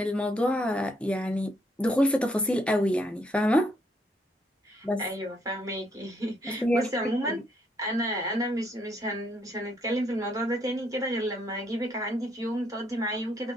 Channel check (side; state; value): both; normal; correlation 0.72